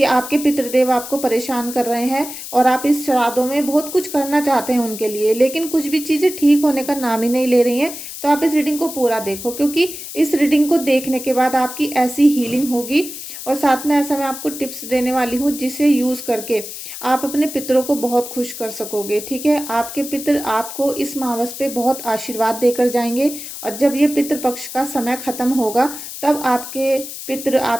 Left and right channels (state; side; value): noise; left; hiss, 10 dB below the sound